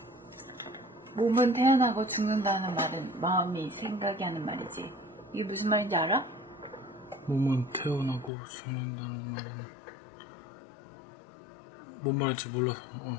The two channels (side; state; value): right; drops out; at 8.3 s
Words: 몸은 태어나고 죽는다는 말은 마음이 생각이 하는 말이지. 이게 무슨 말인지 알아? 몸은 태어나고 죽는다는 말은 뭔 말인지 몰라서